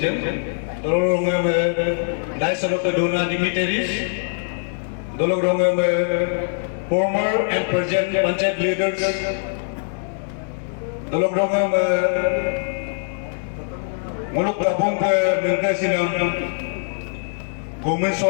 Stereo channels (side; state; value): right; silent; 64 dB below the other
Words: Dalorongam Dyson of the Dona dignitaries, Dalorongam former and present Panchayat leaders, Dalorongam Muluk Tabung Bengkasinam, Gomin